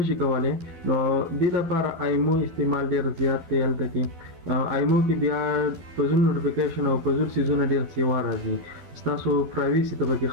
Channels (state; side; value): late; left; 12 ms